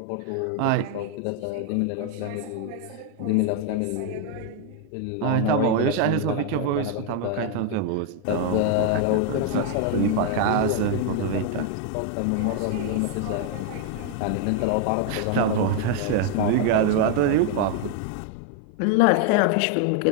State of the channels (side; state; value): both; different; correlation 0.00